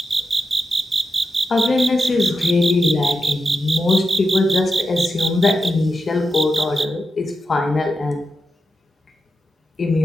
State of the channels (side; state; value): both; normal; correlation 0.88